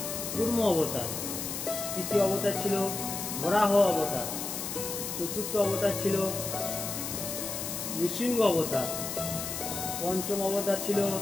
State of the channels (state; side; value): noise; left; hiss, 5 dB below the sound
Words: কুর্ম অবতার, তৃতীয় অবতার ছিল বরাহ অবতার, চতুর্থ অবতার ছিল নৃসিংহ অবতার, পঞ্চম অবতার ছিল